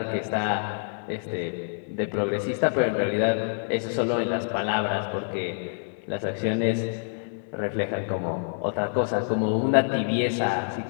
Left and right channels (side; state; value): right; silent; 60 dB below the other